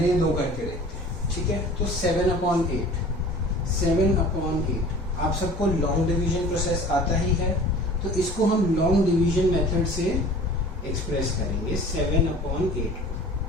ये दो करके देखते हैं। ठीक है, तो 7 अपॉन 8 आप सबको लॉन्ग डिवीजन प्रोसेस आता ही है, तो इसको हम लॉन्ग डिवीजन मेथड से एक्सप्रेस करेंगे। 7 अपॉन 8,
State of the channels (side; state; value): both; normal; correlation 0.44